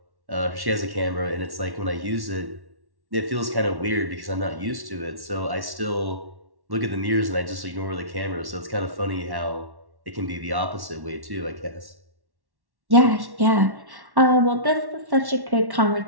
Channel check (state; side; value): late; left; 1.1 ms